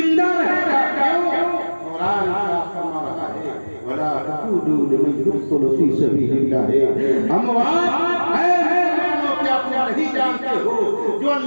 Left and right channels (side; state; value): both; inverted; correlation -1.00